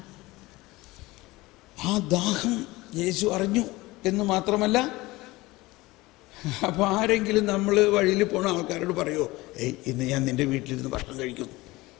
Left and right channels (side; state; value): right; quieter; 20.4 dB